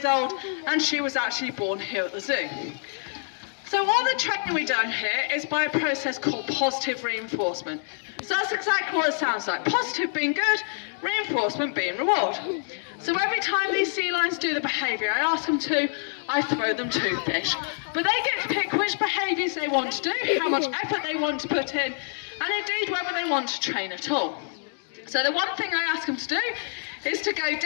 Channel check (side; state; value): right; silent; digital silence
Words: old and she was actually born here at the zoo. So all the training we do here is by a process called positive reinforcement. So that's exactly what it sounds like. Positive being good, reinforcement being reward. So every time these sea lions do the behaviour I ask them to, I throw them 2 fish. But they get to pick which behaviours they want to do, how much effort they want to put in, and indeed whether they want to train at all. So the one thing I ask them to do is to go